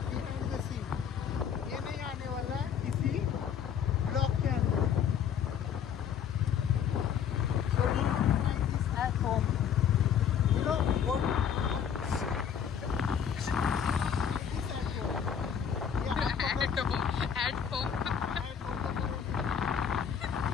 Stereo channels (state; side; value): quieter; right; 8.1 dB